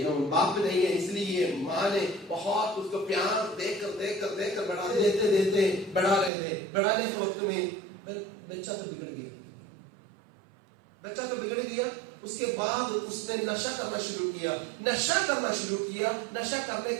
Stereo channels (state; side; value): drops out; left; at 6.3 s